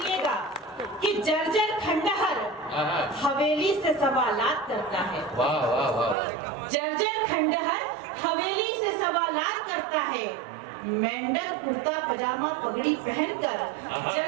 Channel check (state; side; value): drops out; left; at 6.2 s